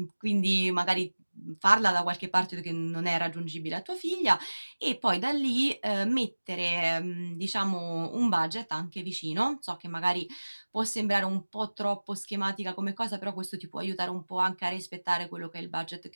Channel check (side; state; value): both; inverted; correlation -1.00